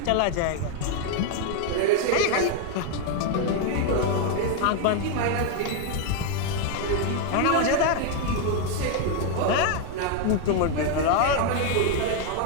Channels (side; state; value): both; different; correlation 0.01